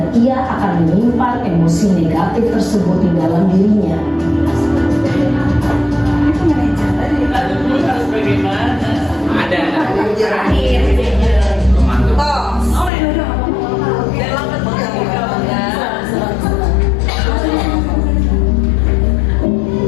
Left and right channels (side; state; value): right; drops out; at 12.9 s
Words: ia akan menyimpan emosi negatif tersebut di dalam dirinya. Ada. Terakhir. Pemantau.